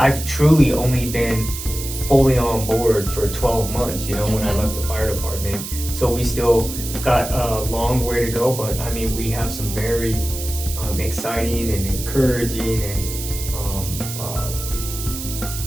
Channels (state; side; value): noise; right; hiss, 8 dB below the sound